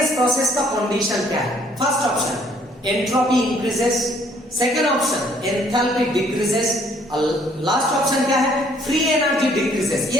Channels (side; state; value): both; normal; correlation 0.62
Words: प्रोसेस का कंडीशन क्या है? First option entropy increases, second option enthalpy decreases, last option क्या है, फ्री एनर्जी डिक्रीजेस।